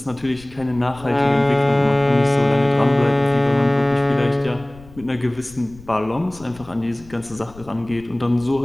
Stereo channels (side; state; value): left; noise; rumble, 22 dB below the sound